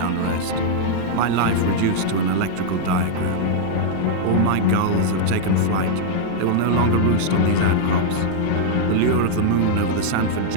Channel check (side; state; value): both; different; correlation -0.01